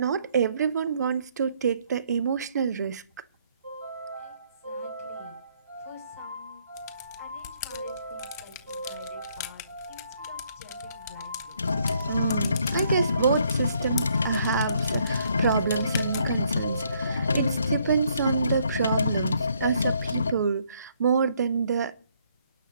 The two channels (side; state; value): both; inverted; correlation -0.69